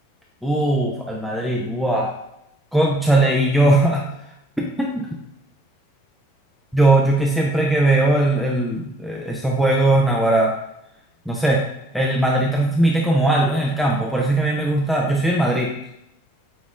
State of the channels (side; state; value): both; normal; correlation 0.65